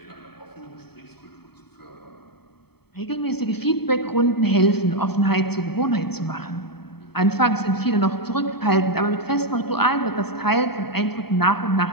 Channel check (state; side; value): late; right; 0.97 ms